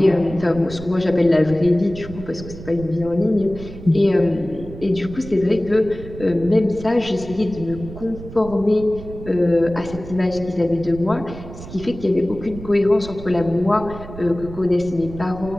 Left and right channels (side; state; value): right; noise; rumble, 13 dB below the sound